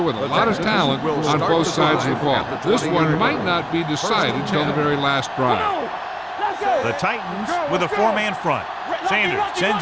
with a lot of talent on both sides of the ball. This one might not be decided until the very last drive. The Titans with a four-man front. Sanders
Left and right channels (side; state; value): both; identical; correlation 1.00